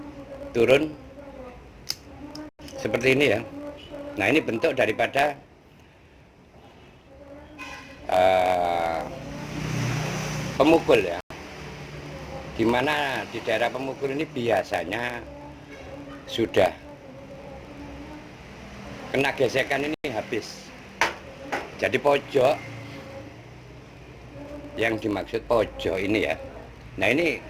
seperti ini ya. Nah ini bentuk daripada pemukul ya, dimana di daerah pemukul ini biasanya sudah kena gesekan ini habis. Jadi pojok yang dimaksud pojok ini ya. Nah ini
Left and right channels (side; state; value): both; identical; correlation 1.00